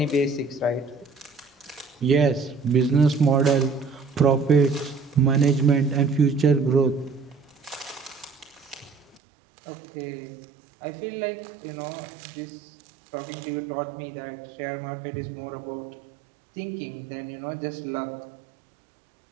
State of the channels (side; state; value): left; drops out; at 9.2 s